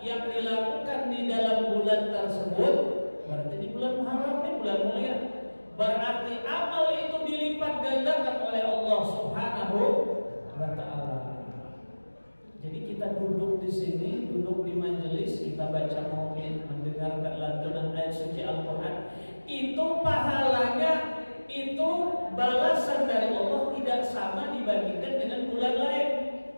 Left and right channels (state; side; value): inverted; both; correlation -1.00